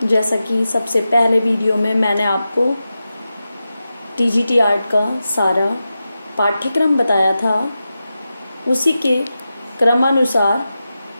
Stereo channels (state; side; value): inverted; both; correlation -0.92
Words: जैसा कि सबसे पहले वीडियो में मैंने आपको टीजीटी आर्ट का सारा पाठ्यक्रम बताया था, उसी के क्रमानुसार